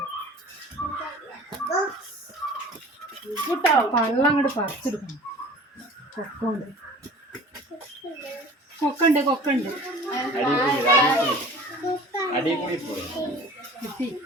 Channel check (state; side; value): normal; both; correlation 0.44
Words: പള്ളം അങ്ങോട്ട് പറിച്ചെടുക്കണം. കൊക്കുണ്ട് കൊക്കുണ്ട് കിട്ടി.